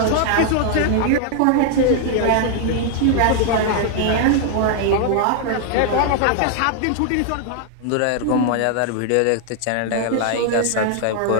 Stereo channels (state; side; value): different; both; correlation 0.00